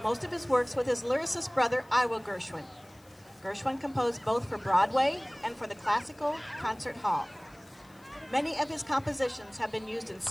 most of his works with his lyricist brother, Ira Gershwin. Gershwin composed both for Broadway and for the Classical Concert Hall. Many of his compositions have been used in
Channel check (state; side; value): noise; left; hiss, 29 dB below the sound